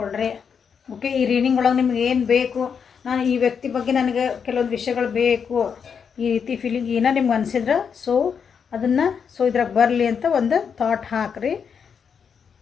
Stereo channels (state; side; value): quieter; right; 6.7 dB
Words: ಓಕೆ, ಈ ರೀಡಿಂಗ್ ಒಳಗೆ ನಿಮ್ಗೆ ಏನು ಬೇಕು, ನಾನು ಈ ವ್ಯಕ್ತಿ ಬಗ್ಗೆ ನನಗೆ ಕೆಲವೊಂದು ವಿಷಯಗಳು ಬೇಕು, ಈ ರೀತಿ ಫೀಲಿಂಗ್ ಏನೋ ನಿಮ್ಗೆ ಅನಿಸಿದ್ರೆ ಅದನ್ನು ಇದ್ರಾಗ ಬರಲಿ ಅಂತ ಒಂದು ಥಾಟ್ ಹಾಕ್ರಿ.